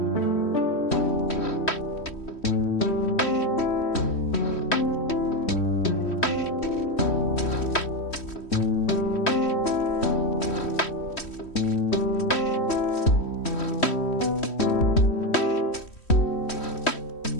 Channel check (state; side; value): late; right; 3.1 ms